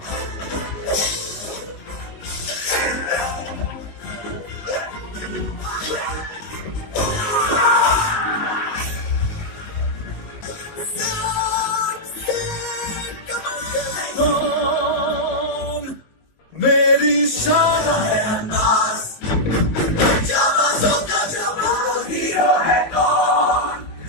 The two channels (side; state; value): right; late; 19 ms